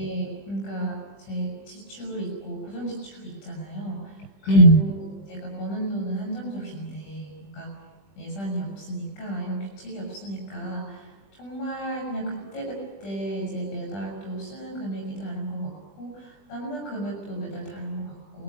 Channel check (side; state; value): right; late; 20 ms